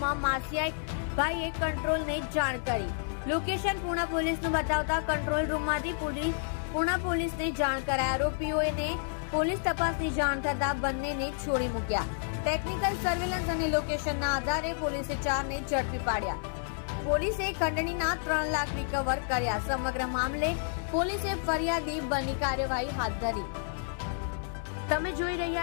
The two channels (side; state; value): right; silent; digital silence